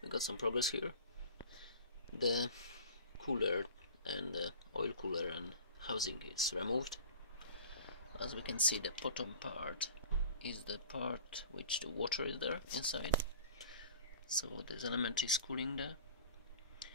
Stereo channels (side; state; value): both; inverted; correlation -0.44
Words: we got some progress here. The cooler and the oil cooler and housing is removed. As we can see, the bottom part is the part which the water is there inside. So this element is cooling the